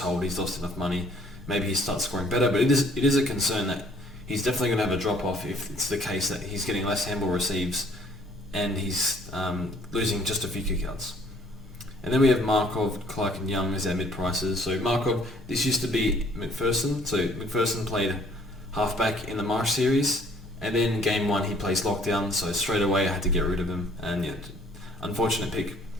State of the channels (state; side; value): normal; both; correlation 0.59